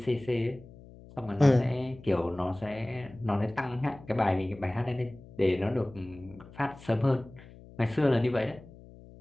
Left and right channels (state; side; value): noise; left; hum, 20 dB below the sound